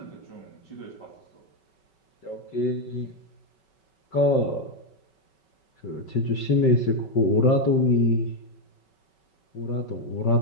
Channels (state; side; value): late; right; 5.3 ms